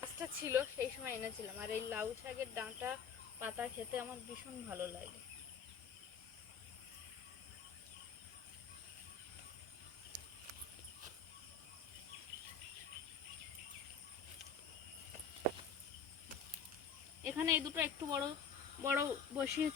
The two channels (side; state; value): right; quieter; 6.0 dB